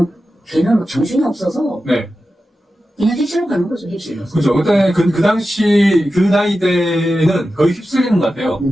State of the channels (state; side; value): normal; both; correlation 0.92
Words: 걔는 뭐 정신이 없어서 네. 그냥 휩쓸려 가는 거죠, 휩쓸려. 그죠. 그때 그 당시, 그 나이 때는 거의 휩쓸리는 것 같아요.